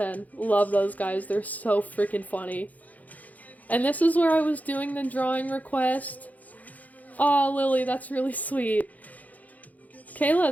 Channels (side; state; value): right; late; 0.077 ms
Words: Love those guys. They're so freaking funny. And this is where I was doing the drawing request. Aw, Lily, that's really sweet.